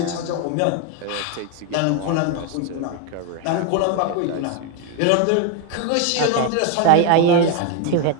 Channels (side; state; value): both; different; correlation 0.02